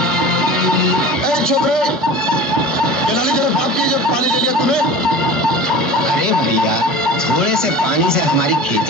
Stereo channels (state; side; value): normal; both; correlation 0.37